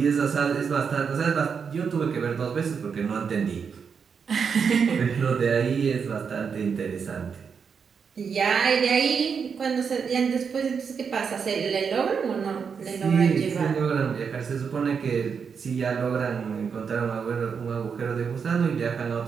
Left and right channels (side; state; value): left; quieter; 6.3 dB